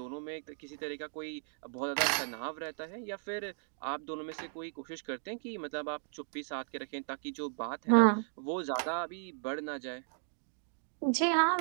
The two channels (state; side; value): silent; left; 54 dB below the other